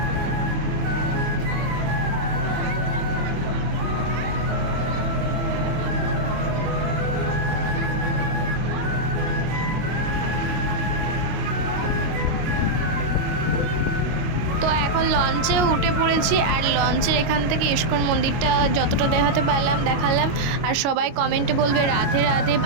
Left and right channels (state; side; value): late; left; 25 ms